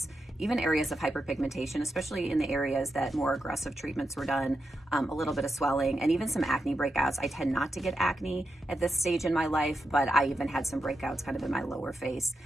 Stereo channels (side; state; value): both; normal; correlation 0.87